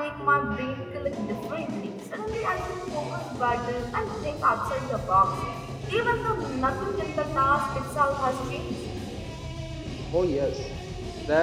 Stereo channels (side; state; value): both; identical; correlation 1.00